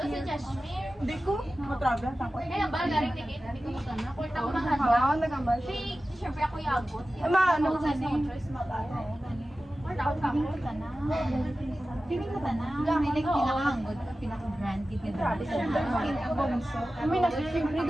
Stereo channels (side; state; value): both; normal; correlation 0.95